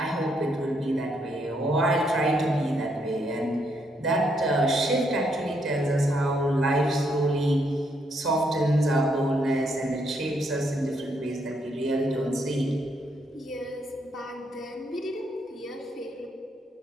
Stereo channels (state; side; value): normal; both; correlation 0.75